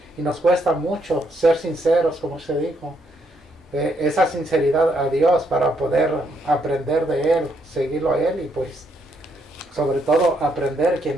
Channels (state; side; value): normal; both; correlation 0.74